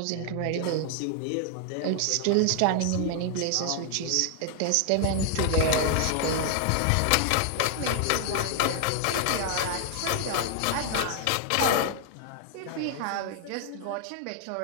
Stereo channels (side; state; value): both; different; correlation 0.00